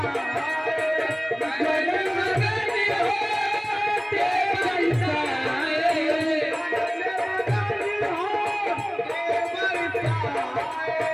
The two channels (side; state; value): both; identical; correlation 1.00